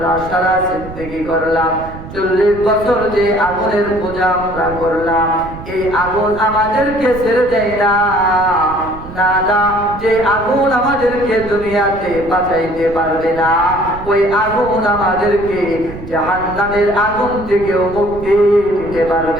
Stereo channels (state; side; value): noise; right; rumble, 13 dB below the sound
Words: সারা জিন্দেগি করলাম, 40 বছর যে আগুনের পূজা আমরা করলাম, এই আগুন আমাদেরকে ছেড়ে দেয় না। না না, যে আগুন আমাদেরকে দুনিয়াতে বাঁচাইতে পারবে না, ওই আগুন আমাদেরকে জাহান্নামের আগুন থেকেও মুক্তি দিতে